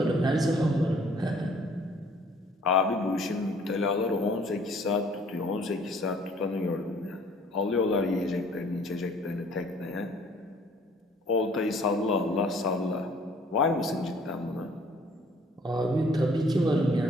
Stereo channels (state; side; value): normal; both; correlation 0.57